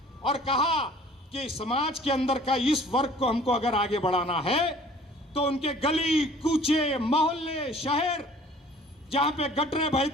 और कहा कि समाज के अंदर का इस वर्ग को हमको अगर आगे बढ़ाना है तो उनके गली कूचे, मोहल्ले, शहर जहां पे गटरें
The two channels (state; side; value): normal; both; correlation 0.51